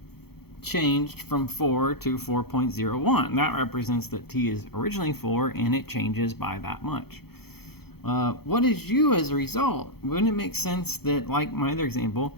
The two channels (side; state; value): right; late; 0.96 ms